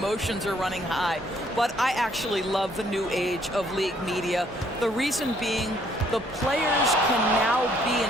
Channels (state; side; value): normal; both; correlation 0.65